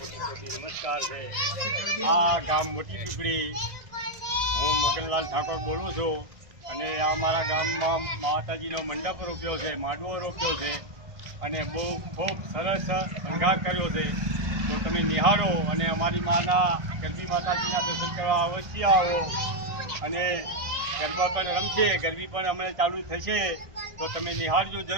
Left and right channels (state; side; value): late; left; 1.6 ms